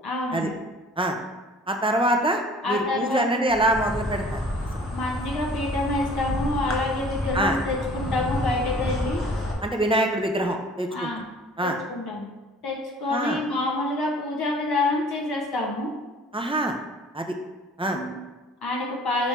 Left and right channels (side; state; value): both; normal; correlation 0.50